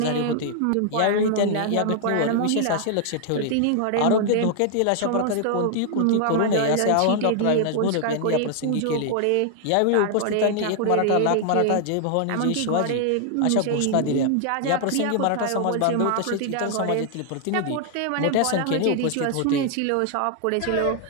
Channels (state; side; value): different; both; correlation 0.00